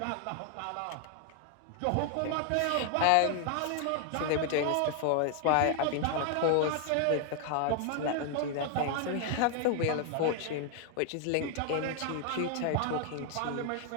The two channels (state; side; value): different; both; correlation 0.00